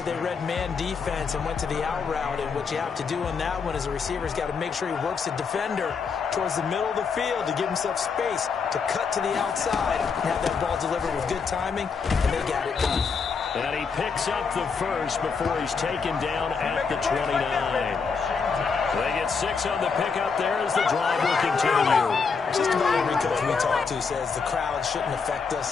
they read man defense and went to the out route, and what you have to do on that one is the receiver's got to make sure he works the defender towards the middle of the field to give himself space to cut to the outside and have that ball delivered with good timing, and they got it done. And he picks up the first before he's taken down at the 29. They get 6 on the pickup there as the drive will continue. Just about every coach we talk to says the crowd shouldn't affect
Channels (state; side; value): quieter; right; 5.4 dB